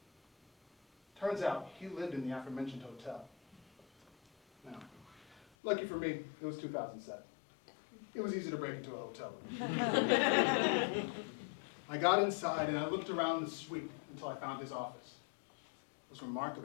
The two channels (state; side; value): drops out; right; at 5.5 s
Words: Turns out, he lived in the aforementioned hotel. Now, lucky for me, it was 2007. It was easy to break into a hotel room. I got inside and I looked around the suite until I found his office. It was